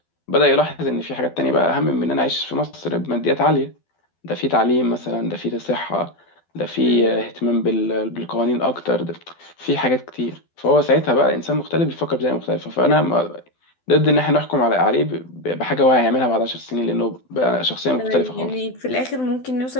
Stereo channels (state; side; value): late; right; 12 ms